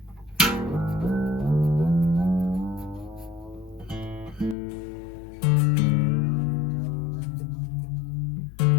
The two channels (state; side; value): drops out; right; at 4.5 s